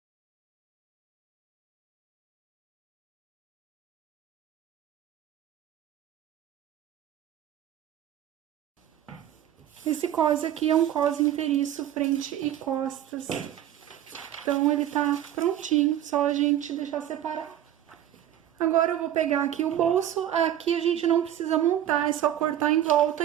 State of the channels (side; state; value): left; quieter; 11.4 dB